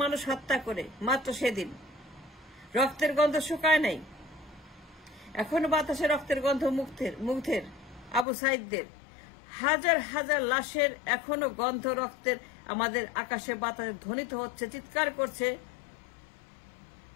মানুষ হত্যা করে মাত্র সেদিন। রক্তের গন্ধ শুকায় নাই, এখনো বাতাসে রক্তের গন্ধ মুগ্ধের। আবু সাইদদের হাজার হাজার লাশের এখনো গন্ধ রক্তের আমাদের আকাশে বাতাসে ধ্বনিত হচ্ছে, চিৎকার করছে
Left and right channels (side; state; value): right; drops out; at 8.2 s